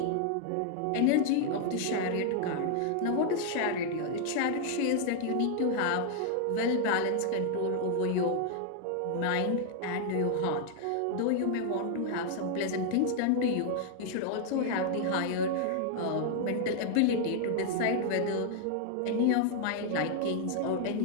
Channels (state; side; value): different; both; correlation 0.00